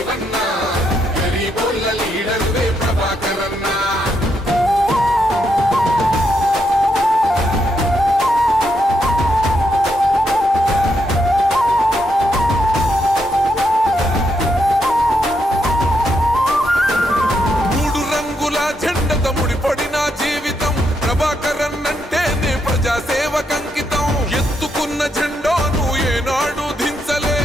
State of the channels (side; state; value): both; normal; correlation 0.79